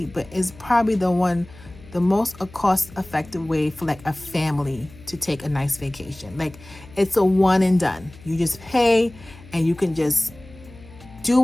but it's probably the one the most cost-effective way for like a family to take a nice vacation. Like, it's a one and done. You just pay and you can just do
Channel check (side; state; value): left; noise; hum, 21 dB below the sound